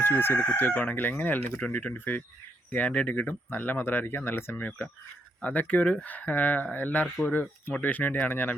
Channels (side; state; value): both; normal; correlation 0.77